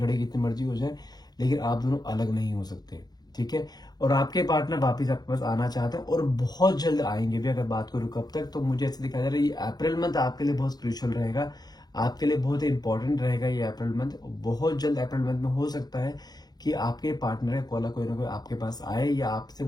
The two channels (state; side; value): late; right; 0.19 ms